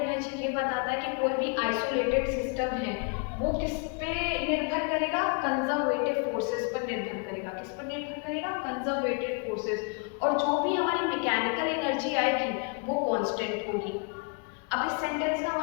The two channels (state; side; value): quieter; right; 35.9 dB